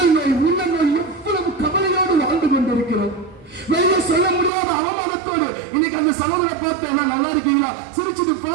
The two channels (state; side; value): drops out; left; at 4.5 s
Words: நோய், உள்ள நோய், எவ்வளவு கவலையோடு வாழ்ந்து கொண்டிருக்கிறோம். வெளியே சொல்ல முடியாத அவமானத்தோடு. இன்னைக்கு அந்த சகோதரை பார்த்து என்ன நல்லா இருக்கீங்களா, சிரிச்சுட்டு